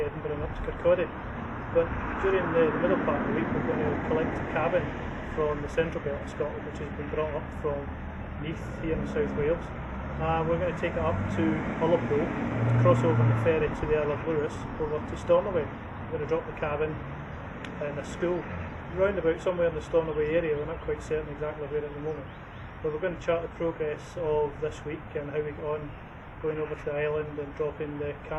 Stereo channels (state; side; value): identical; both; correlation 1.00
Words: and up to Kirkcaldy. But during the middle part of the week we're going to collect a cabin from the central belt of Scotland, which has been brought up from Neath here in South Wales. We're going to take it up to Ullapool, to cross over on the ferry to the Isle of Lewis, over to Stornoway. We're going to drop the cabin in a school round about somewhere in the Stornoway area. We're not quite certain exactly where at the moment, but we're going to chart the progress of this week and how we get on going over to the island and dropping the